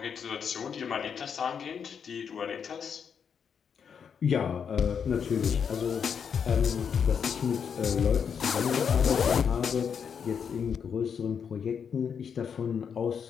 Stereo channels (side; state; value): right; quieter; 7.0 dB